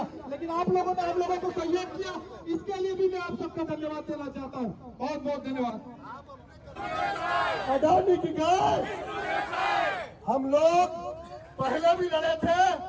लेकिन आप लोगों ने हम लोगों को सहयोग किया, इसके लिए भी मैं आप सबका धन्यवाद देना चाहता हूँ। बहुत बहुत धन्यवाद। अडानी की गाय, हम लोग पहले भी लड़े थे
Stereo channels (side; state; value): both; identical; correlation 1.00